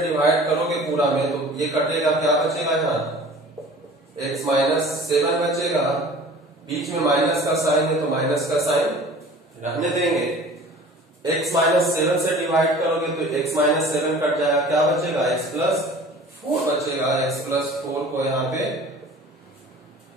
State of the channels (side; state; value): both; normal; correlation 0.44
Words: डिवाइड करोगे पूरा में, तो ये कटेगा, क्या बचेगा यहाँ x-7 बचेगा, बीच में माइनस का साइन है तो माइनस का साइन रहने देंगे। x-7 से डिवाइड करोगे तो x-7 कट जाएगा, क्या बचेगा x+4 बचेगा। x+4 को यहाँ पे